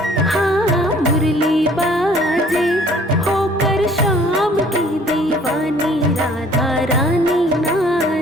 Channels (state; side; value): normal; both; correlation 0.56